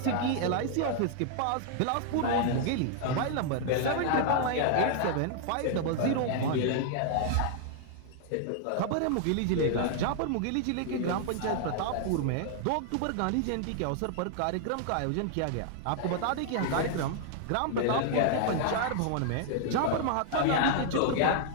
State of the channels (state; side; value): different; both; correlation -0.01